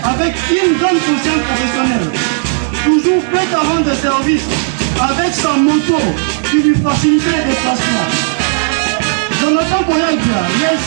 avec une grande conscience professionnelle, toujours prêt à rendre service avec sa moto qui lui facilitait les déplacements. Jonathan Koyabia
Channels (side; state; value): left; silent; digital silence